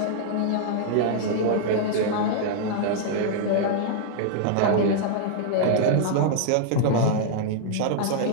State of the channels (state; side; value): different; both; correlation -0.01